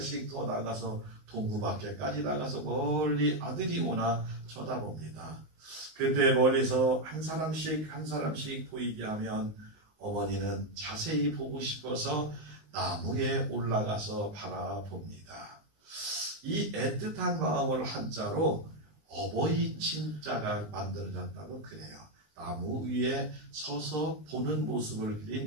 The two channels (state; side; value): late; left; 19 ms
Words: 더 나가서 동구 밖에까지 나가서 멀리 아들이 오나 쳐다봅니다. 그때 멀리서 한 사람씩 보이게 하면 어머니는 자세히 보고 싶어서 나무에 올라가서 바라봅니다. 이 애틋한 마음을 한자로 어버이 친자가 만들어졌다고 그래요. 나무 위에 서서 보는 모습을